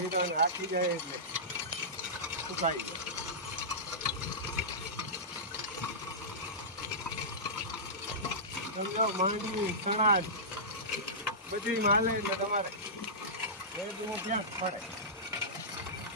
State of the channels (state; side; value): normal; both; correlation -0.17